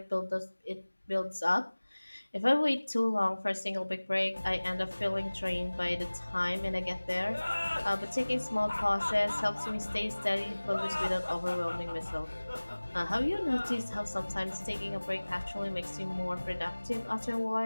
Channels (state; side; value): inverted; both; correlation -1.00